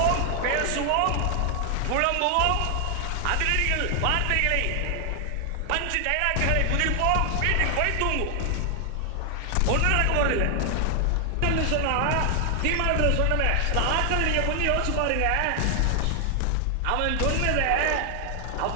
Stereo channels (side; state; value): both; different; correlation 0.00